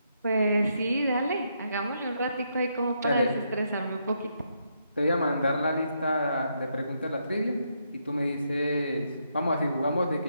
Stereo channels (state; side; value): inverted; both; correlation -0.78